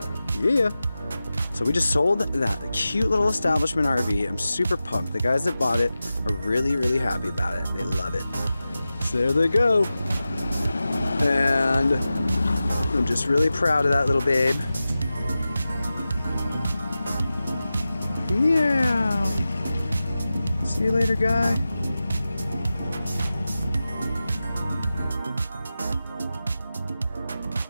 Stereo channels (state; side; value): inverted; both; correlation -0.94